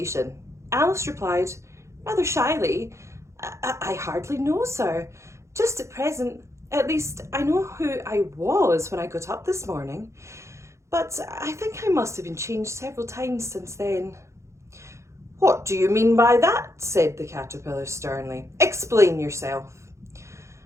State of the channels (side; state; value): left; late; 0.14 ms